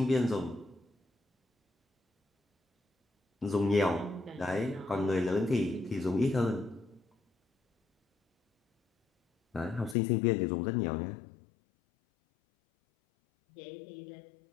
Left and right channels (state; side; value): drops out; right; at 10.0 s